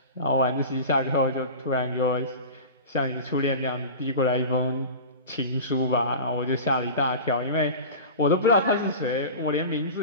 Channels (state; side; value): inverted; both; correlation -0.32